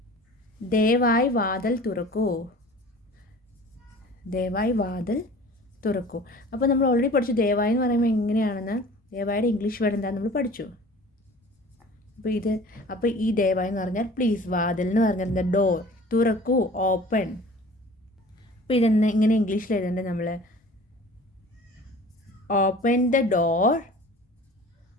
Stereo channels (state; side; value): normal; both; correlation 0.44